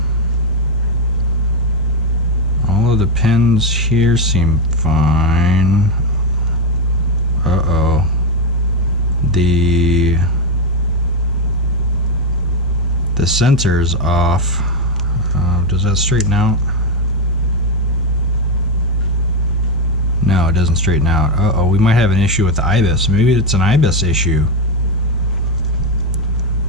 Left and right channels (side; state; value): both; normal; correlation 0.07